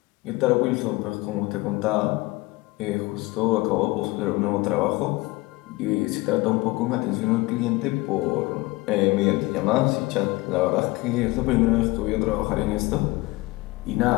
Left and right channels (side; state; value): right; quieter; 21.9 dB